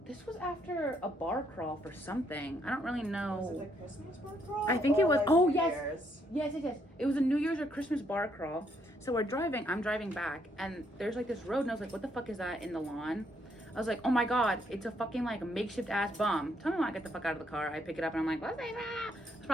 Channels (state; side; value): normal; both; correlation 0.72